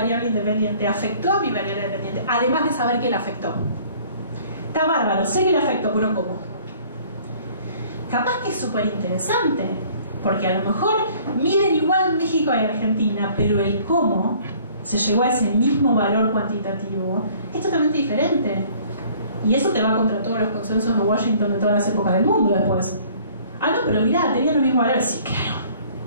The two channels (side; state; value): both; inverted; correlation -0.54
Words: independiente afectó a mi variable dependiente, además de saber que la afectó. Está bárbaro, sé que la afectó, pero ¿cómo? Capaz que es súper interesante, porque a lo mejor miden igual México y Argentina, pero el cómo se llegó a ese mismo valor cuantitativo es totalmente diferente. Y eso te va contra todos los consensos de Washington de todas las épocas del mundo después. Ah, no, pero mirá, tenían los mismos valores. Sí,